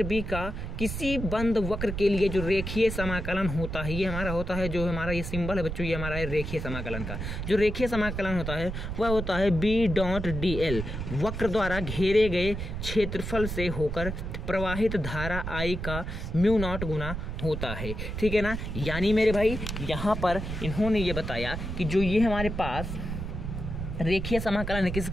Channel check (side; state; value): right; noise; rumble, 5 dB below the sound